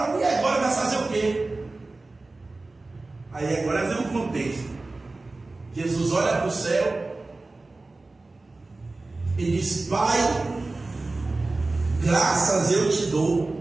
e agora vai fazer o quê? Aí agora vem um contexto. Jesus olha para o céu e diz: Pai, graças eu te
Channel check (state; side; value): quieter; left; 3.3 dB